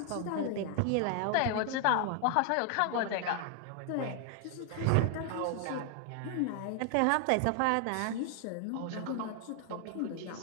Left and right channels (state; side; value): different; both; correlation 0.00